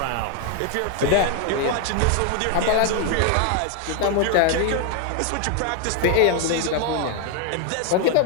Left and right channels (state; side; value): different; both; correlation 0.01